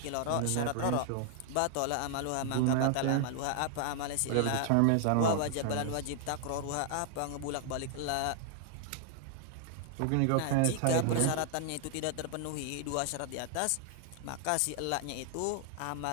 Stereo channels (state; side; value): different; both; correlation 0.00